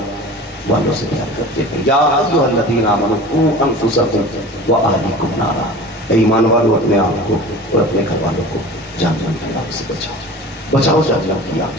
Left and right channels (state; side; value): normal; both; correlation 0.38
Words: والوں سے پیار کرتے ہیں. یا ایھا الذین آمنوا قوا انفسکم واہلیکم نارا, ایمان والوں اپنے آپ کو اور اپنے گھر والوں کو جہنم کی آگ سے بچاؤ, بچاؤ جہنم کی آگ